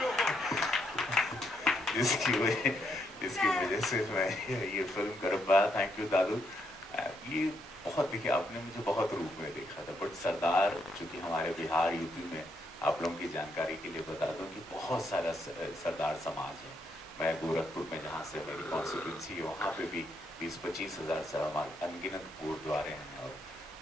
जिसकी वजह से मैं ये फिल्म कर पाया। थैंक यू दादू। ये बहुत, देखिए आपने मुझे बहुत रूप में देखा था, बट सरदार चूँकि हमारे बिहार यूपी में, आप लोगों की जानकारी के लिए बता दूं कि बहुत सारा सरदार समाज है। मैं गोरखपुर में, जहाँ से मेरी कॉन्स्टिट्यूंसी है, वहाँ पे भी 20-25 हज़ार से हमारे अनगिनत गुरुद्वारे हैं और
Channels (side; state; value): both; normal; correlation 0.77